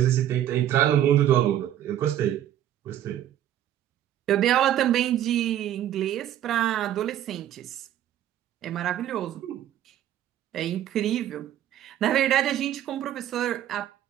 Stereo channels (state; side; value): quieter; left; 11.6 dB